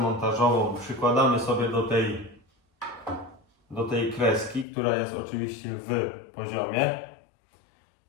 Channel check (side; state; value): right; drops out; at 4.7 s